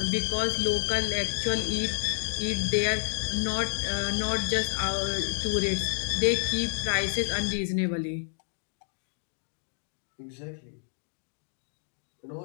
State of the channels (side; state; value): right; silent; digital silence